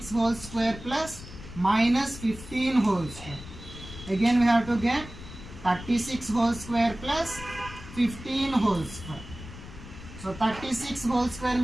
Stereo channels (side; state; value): left; noise; rumble, 14 dB below the sound